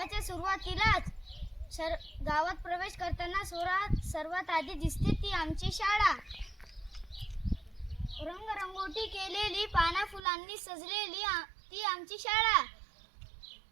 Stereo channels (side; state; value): left; drops out; at 10.2 s